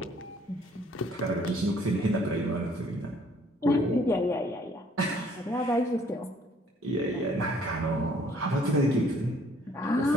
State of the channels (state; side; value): normal; both; correlation 0.61